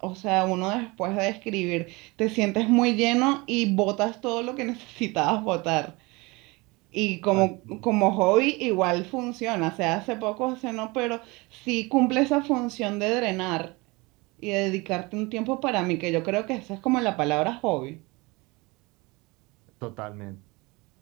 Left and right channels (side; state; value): left; quieter; 24.7 dB